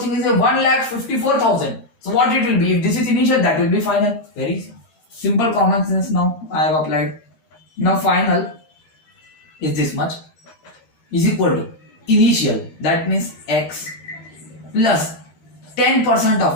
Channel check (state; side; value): late; right; 13 ms